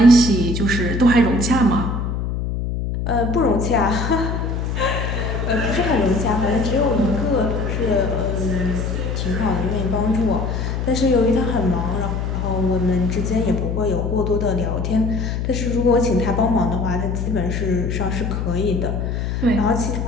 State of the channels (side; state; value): left; noise; hum, 2 dB below the sound